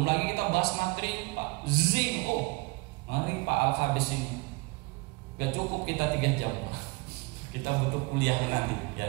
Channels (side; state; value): left; quieter; 26.2 dB